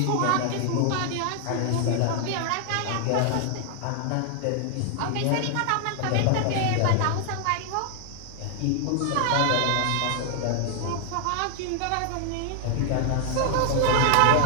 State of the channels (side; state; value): both; different; correlation 0.00